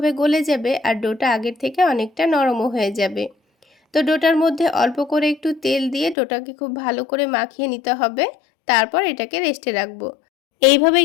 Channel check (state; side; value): drops out; right; at 6.2 s